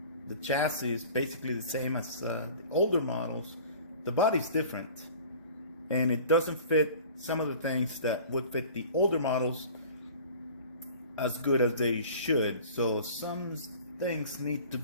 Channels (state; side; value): inverted; both; correlation -0.44